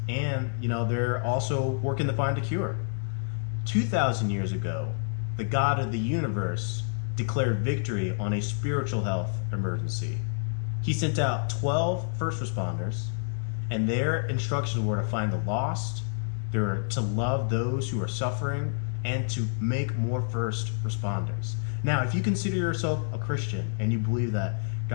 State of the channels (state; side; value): silent; right; digital silence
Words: and, they're also working to find a cure. 2,000 years ago, the God of the universe declared victory on a spiritual health emergency. He sent out 12 first responders, and their instructions were to find the lost, they were to love those who are suffering, and to make more first responders. Now, if you consider yourself a Christian and you believe that